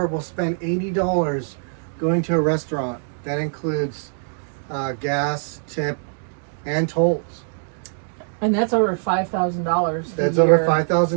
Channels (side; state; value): left; silent; 64 dB below the other